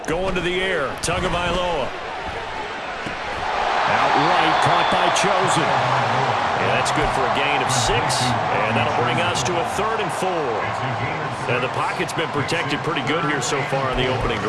Going to the air, Tagovailoa. Outright, caught by Chosen. And that's good for a gain of 6. And that'll bring us to a 3rd and 4. And the pocket's been protected pretty good here so far on the opening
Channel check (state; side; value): identical; both; correlation 1.00